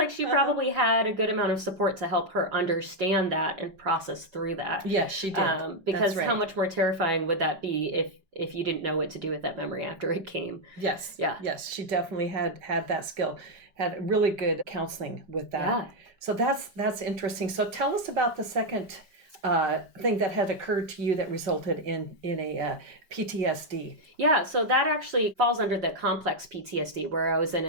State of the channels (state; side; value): late; left; 5.2 ms